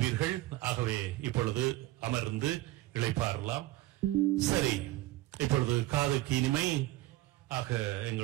ஆகவே இப்பொழுது அமர்ந்து இளைப்பாறலாம். சரி, இப்பொழுது காதுக்கு இனிமை ஆக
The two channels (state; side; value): quieter; left; 17.1 dB